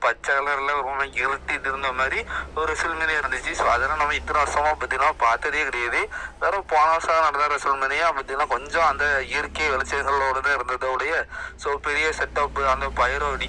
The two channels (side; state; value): both; identical; correlation 1.00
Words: பச்சை கலர்ல ரொம்ப இருட்டிட்டு இருந்த மாதிரி ஒரு ரெசல்மனியா இருந்துச்சு. ஸோ அதெல்லாம் நம்ம இத்தனை வருஷமா பார்த்தீங்கன்னா பார்த்ததே கிடையாது. வேற போன வருஷம் நடந்த ரெசல்மனியா பார்த்தீங்கன்னா கொஞ்சம் அந்த இயற்கை வெளிச்சங்களோட தான் இருந்ததோடைய ஸோ பெரிய செட்டப், அந்த பயிரோ